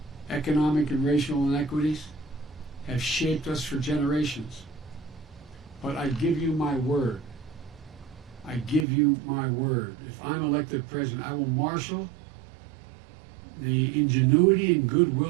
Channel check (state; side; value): drops out; left; at 8.8 s